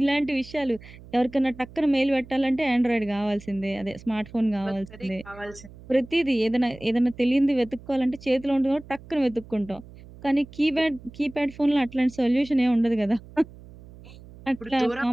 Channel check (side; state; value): right; noise; hum, 19 dB below the sound